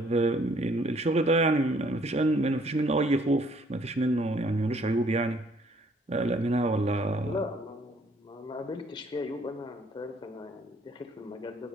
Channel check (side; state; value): both; normal; correlation 0.62